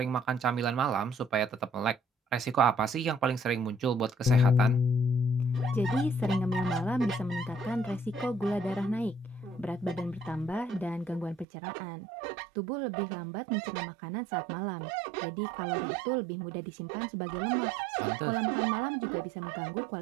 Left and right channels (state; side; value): drops out; left; at 11.5 s